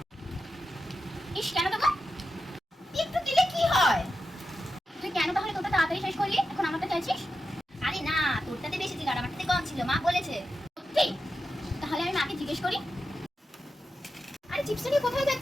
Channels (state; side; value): normal; both; correlation 0.90